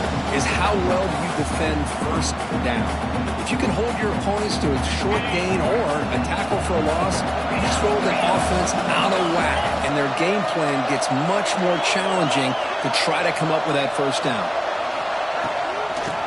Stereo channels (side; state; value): both; identical; correlation 1.00